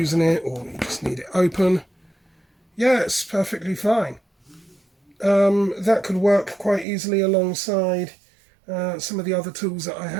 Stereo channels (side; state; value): left; drops out; at 6.9 s